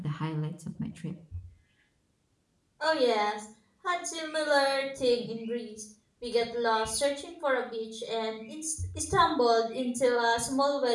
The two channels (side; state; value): both; identical; correlation 1.00